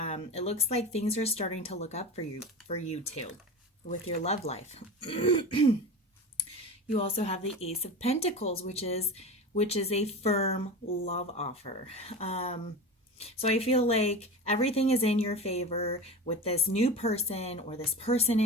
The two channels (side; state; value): both; normal; correlation 0.29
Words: it looks like things are starting to look up for you too with your love life. You also have the Ace of Pentacles, which is a firm love offer. So I feel like everything is in your favor with this new person or this person